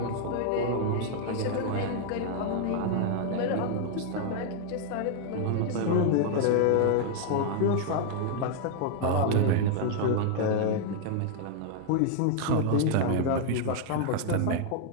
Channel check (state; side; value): different; both; correlation 0.00